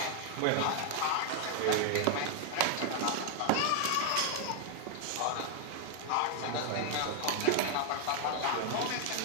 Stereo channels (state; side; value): different; both; correlation 0.00